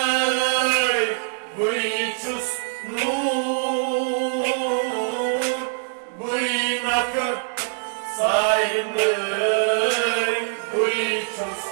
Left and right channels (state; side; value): silent; left; digital silence